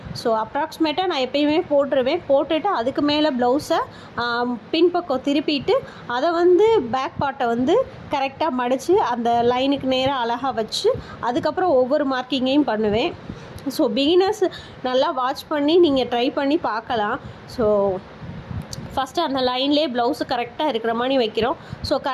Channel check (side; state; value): both; identical; correlation 1.00